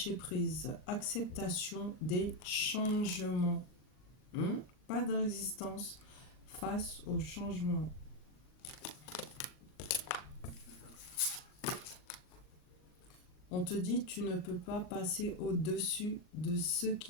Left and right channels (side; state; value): right; late; 39 ms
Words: acceptation des changements. Pas de résistance face aux changements. On te dit tu ne peux pas passer au-dessus de ce